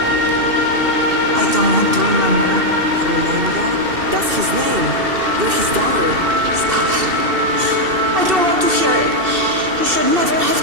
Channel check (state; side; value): late; left; 2.7 ms